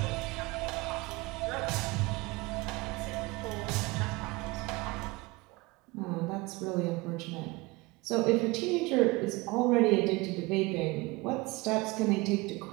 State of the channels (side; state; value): left; quieter; 23.3 dB